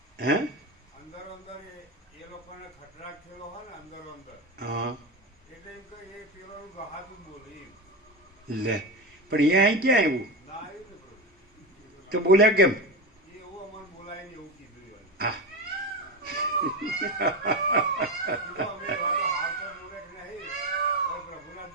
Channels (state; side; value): normal; both; correlation 0.19